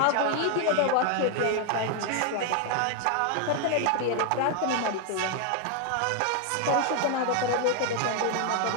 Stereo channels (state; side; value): different; both; correlation 0.00